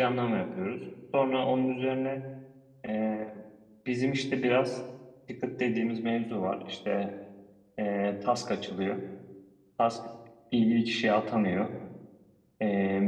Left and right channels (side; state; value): both; identical; correlation 1.00